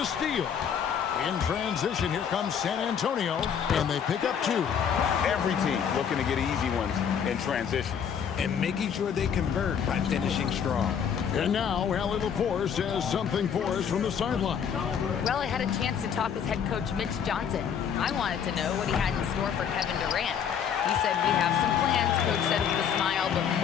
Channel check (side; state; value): right; quieter; 7.8 dB